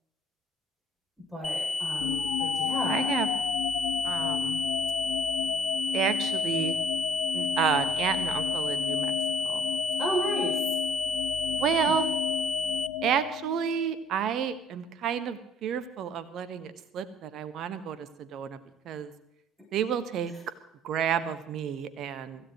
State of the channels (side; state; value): both; normal; correlation 0.57